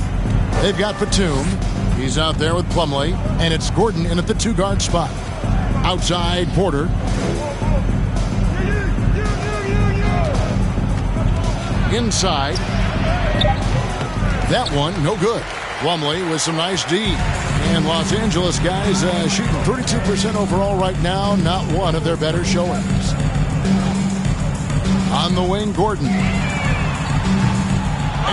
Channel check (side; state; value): both; identical; correlation 1.00